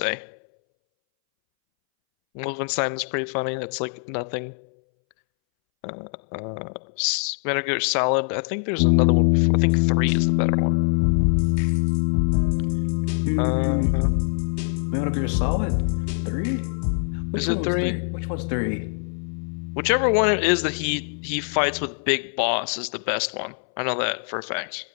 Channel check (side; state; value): right; silent; 63 dB below the other